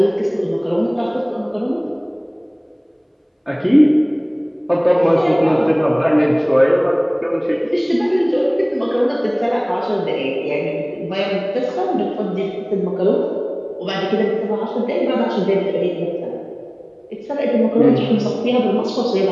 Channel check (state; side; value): identical; both; correlation 1.00